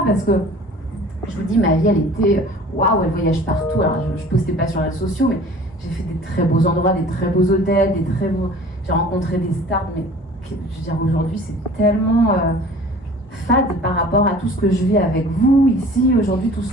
parce que, je vous dis, ma vie, elle était, waouh, elle voyage partout. Alors, je ne postais pas sur les réseaux sociaux, mais j'ai fait des très beaux endroits, des très beaux hôtels, j'ai rencontré des stars, mais je veux dire, aujourd'hui, c'est tellement fade par rapport à tout ce que je vis avec vous, ici, aujourd'hui, tout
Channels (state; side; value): normal; both; correlation 0.46